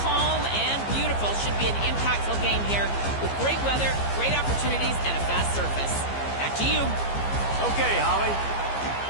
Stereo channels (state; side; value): late; right; 15 ms